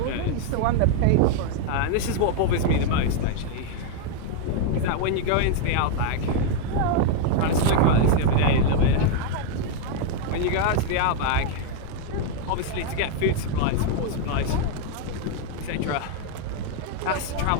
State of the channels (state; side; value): different; both; correlation 0.00